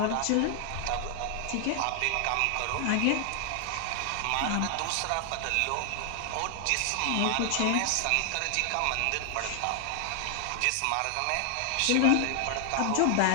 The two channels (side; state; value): both; different; correlation 0.00